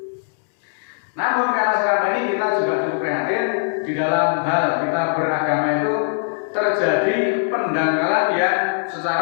Namun karena sekarang ini kita juga cukup prihatin di dalam hal kita beragama itu terjadi pendangkalan yang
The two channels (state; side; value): silent; right; digital silence